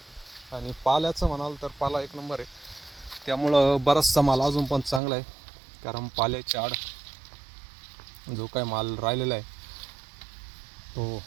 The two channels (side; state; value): left; drops out; at 5.0 s